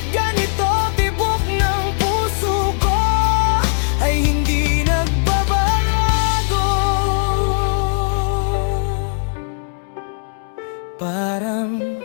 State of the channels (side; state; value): right; silent; 67 dB below the other